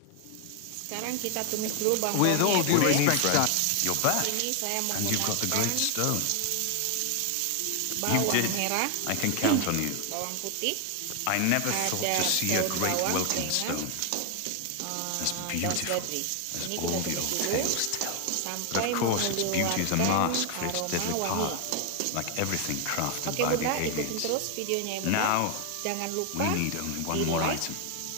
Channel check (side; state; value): both; different; correlation 0.00